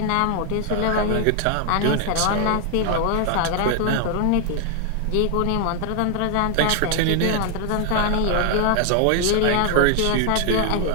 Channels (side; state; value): both; different; correlation 0.00